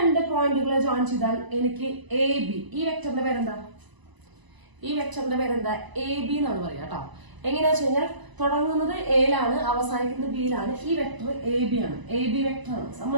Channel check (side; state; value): left; late; 1.0 ms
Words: പോയിന്റുകളെ ജോയിൻ ചെയ്താൽ എനിക്ക് എ ബി, ഈ വെക്ടറിന്റെ പേരെന്താ? എ ബി എന്നാണ് പറയുക കേട്ടോ. എങ്ങനെയാ വെച്ച് കഴിഞ്ഞാൽ തുടങ്ങുന്നത് എയിലാണ്, അവസാനിക്കുന്നത് ബിയിലാണ്. ഈ വെക്ടർ എ ബി ആണ്, എ ബി വെക്ടർ ആണ്.